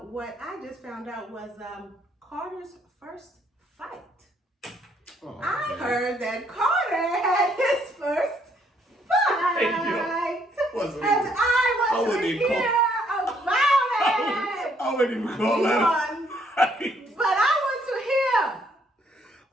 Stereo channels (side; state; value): both; normal; correlation 0.68